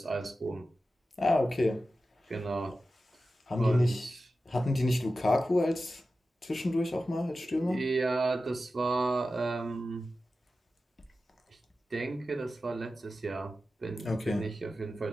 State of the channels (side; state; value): both; normal; correlation 0.93